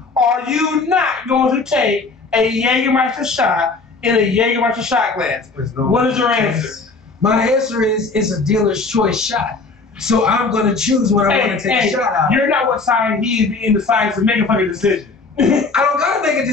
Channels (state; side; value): quieter; right; 4.0 dB